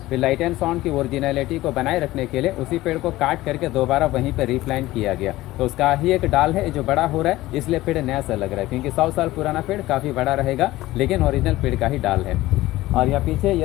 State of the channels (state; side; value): quieter; right; 17.2 dB